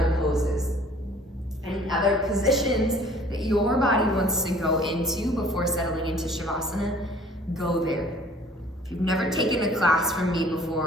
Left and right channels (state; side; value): normal; both; correlation 0.52